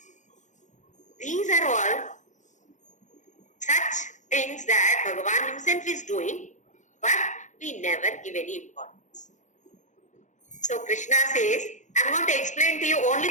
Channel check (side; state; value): right; late; 0.35 ms